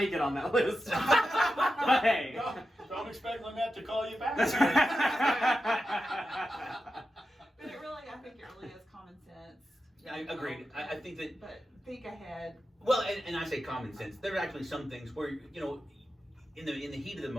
it on that list. But hey. Don't expect Lynette to call you back. But I think it really is common sense. I agreed. I think that, But think ahead. well, and I say common sense. There are actually some things where, in the heat of the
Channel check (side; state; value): both; normal; correlation 0.90